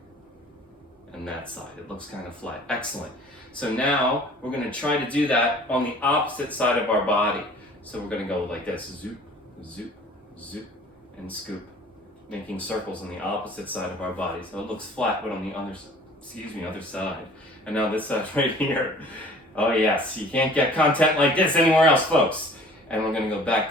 and that side, it looks kind of flat. Excellent. So now we're going to try to do that on the opposite side of our body. So we're going to go like this. Zoop, zoop, zoop, and scoop. Making circles on the opposite side of our body. So it looks flat, but on the other side. And now this side right here. Oh yes, you can't get content like this anywhere else, folks. And we're going to go back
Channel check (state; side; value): normal; both; correlation 0.49